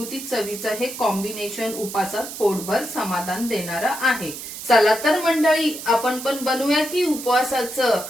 चवीचं हे कॉम्बिनेशन उपासात पोटभर समाधान देणारं आहे। चला तर मंडळी, आपण पण बनवूया की उपवासाचं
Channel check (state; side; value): noise; right; hiss, 10 dB below the sound